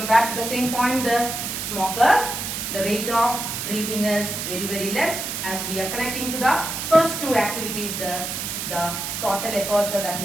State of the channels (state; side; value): noise; right; hiss, 4 dB below the sound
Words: back to the same point. The smokers, the rate of breathing is very, very less. As we are connecting to the first two activities, the total aperture, that